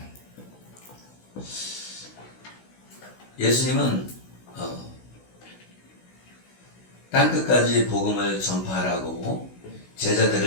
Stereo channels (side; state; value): right; late; 16 ms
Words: 예수님은 땅끝까지 복음을 전파하라고